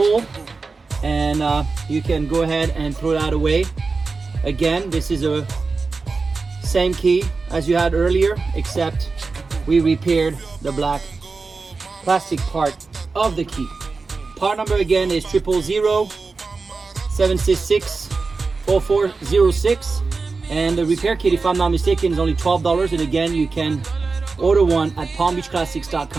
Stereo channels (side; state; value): left; quieter; 4.2 dB